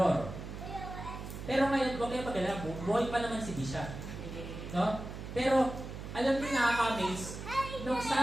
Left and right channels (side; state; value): right; noise; hum, 9 dB below the sound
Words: Pero ngayon, huwag kayo mag-alala, buhay pa naman si bishop. No? Pero, alam niyo nakaka-amaze, nung